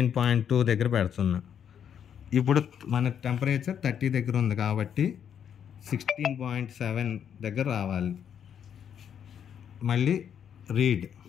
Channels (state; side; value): quieter; right; 8.5 dB